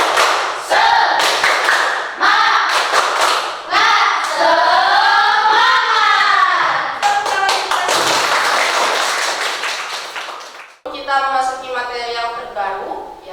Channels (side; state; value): both; identical; correlation 1.00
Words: Kita memasuki materi yang terbaru,